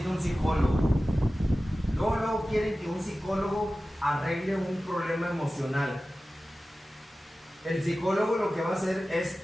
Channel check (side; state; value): both; normal; correlation 0.95